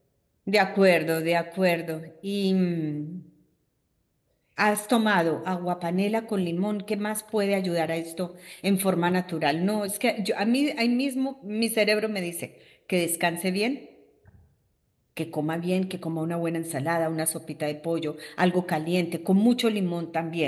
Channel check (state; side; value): identical; both; correlation 1.00